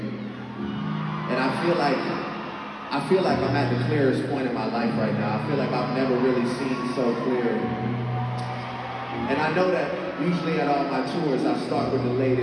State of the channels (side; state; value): both; identical; correlation 1.00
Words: And I feel like I'm at the clearest point in my life right now. I feel like I've never really seen so clear. And I know that usually at all my tours, I start with the